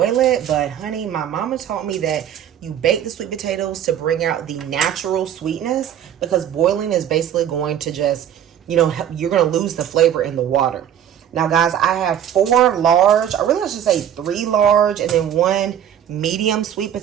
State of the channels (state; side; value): quieter; left; 9.9 dB